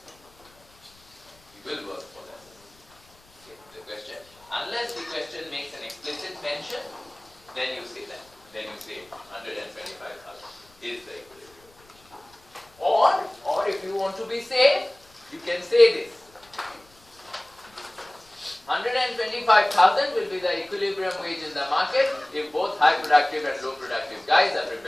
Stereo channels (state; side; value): noise; left; rumble, 29 dB below the sound